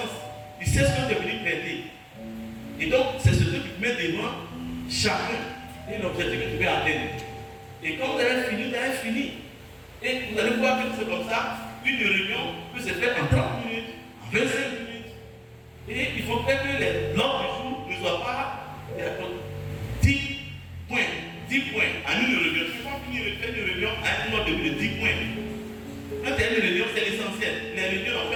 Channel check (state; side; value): identical; both; correlation 1.00